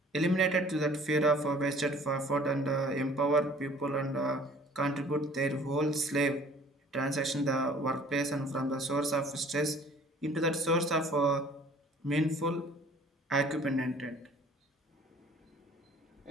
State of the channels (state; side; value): normal; both; correlation 0.52